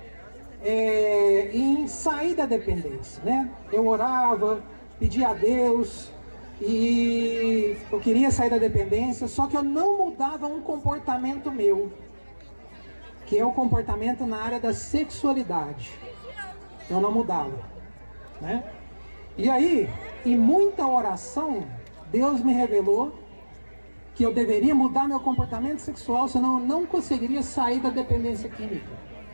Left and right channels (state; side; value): inverted; both; correlation -1.00